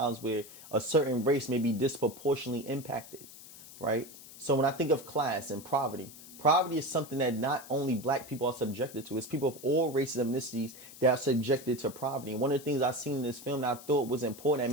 where a certain race may be disproportionately impacted, right? So when I think of class and poverty, poverty is something that not only black people are subjected to, it's people of all races and ethnicities that are subjected to poverty. And one of the things I've seen in this film that I thought was important that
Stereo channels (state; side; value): noise; left; hiss, 17 dB below the sound